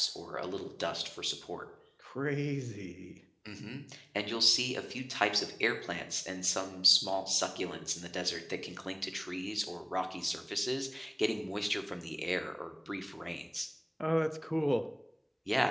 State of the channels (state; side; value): identical; both; correlation 1.00